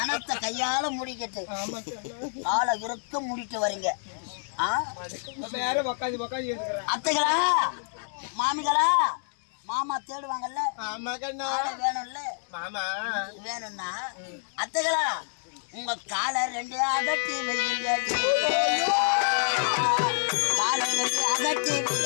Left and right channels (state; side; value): silent; right; digital silence